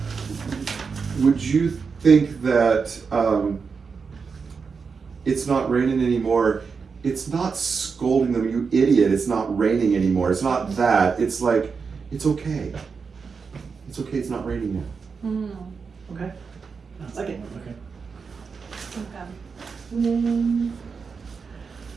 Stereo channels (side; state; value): left; quieter; 5.4 dB